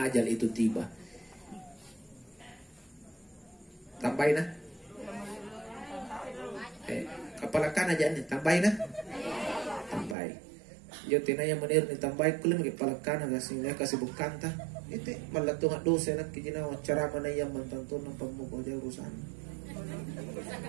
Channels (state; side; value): drops out; left; at 10.2 s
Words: itu tiba? Tambahin nah. Kepala kan aja nih tambahin nah. Tambahin. Yo tinaya menir ni tambay kulim gi palakana gasingnya kasih bukan ta itu malato nga dosa nak kijina cara mana yang mantanto ng pagmuko dia urusan